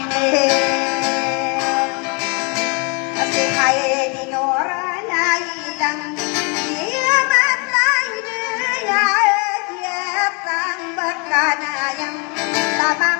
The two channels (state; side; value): quieter; right; 33.3 dB